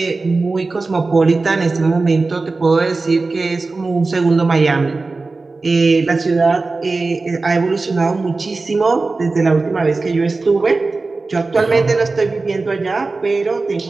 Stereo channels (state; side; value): quieter; left; 3.7 dB